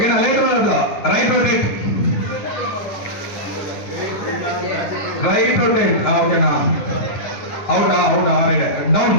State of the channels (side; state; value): right; late; 9.8 ms